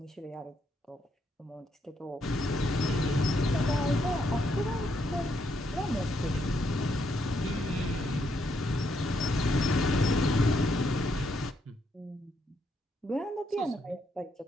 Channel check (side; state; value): both; normal; correlation 0.76